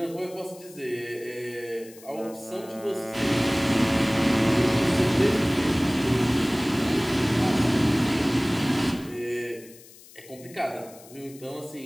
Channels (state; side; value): noise; left; hiss, 21 dB below the sound